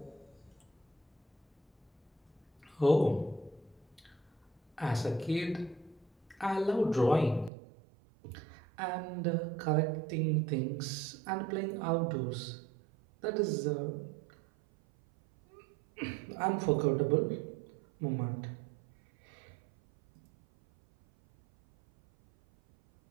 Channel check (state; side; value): drops out; left; at 7.5 s